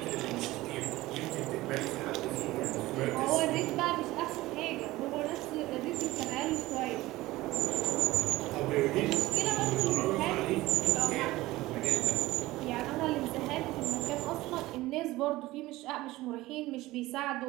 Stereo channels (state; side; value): quieter; left; 18.2 dB